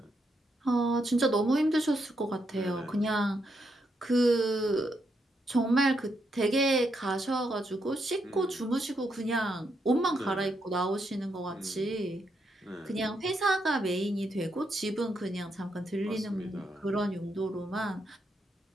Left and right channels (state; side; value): normal; both; correlation 0.79